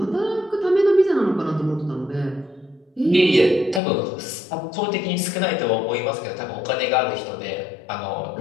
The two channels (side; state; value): right; drops out; at 3.8 s